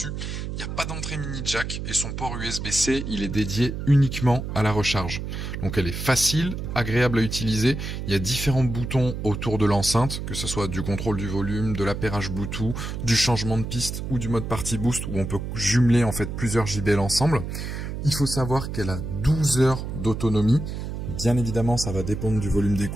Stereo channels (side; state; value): right; noise; hum, 5 dB below the sound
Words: Il n'y a pas d'entrée mini jack et son port USB-C, il est dédié uniquement à la recharge. Donc elle est facile, agréable à utiliser. Il y a différents boutons autour de l'enceinte, que ce soit du contrôle du volume, de l'appairage Bluetooth, du changement de piste ou du mode party boost où on peut jumeler en fait plusieurs JBL ensemble. Il faut savoir qu'elle a 12 heures d'autonomie. Bien évidemment, ça va dépendre du volume